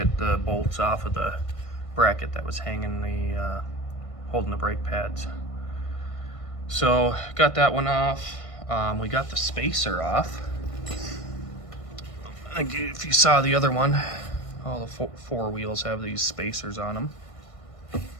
the bolts off of the bracket that was hanging the, holding the brake pads. So, got that one off. We got the spacer off. I think if you saw the other one, all the four wheels have these spacers on them.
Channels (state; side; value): late; right; 1.5 ms